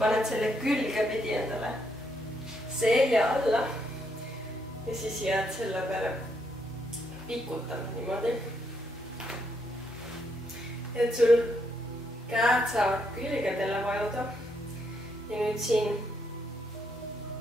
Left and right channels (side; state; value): both; normal; correlation 0.76